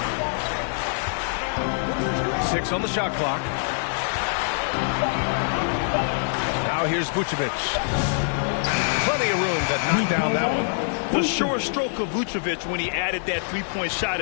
6 on the shot clock. Now here's Vucevic. Plenty of room to knock down that one. The sure stroke of Vucevic when he added that three-point shot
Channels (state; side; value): silent; right; digital silence